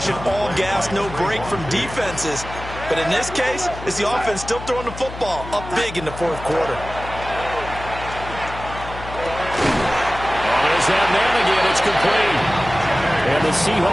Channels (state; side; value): noise; left; hum, 12 dB below the sound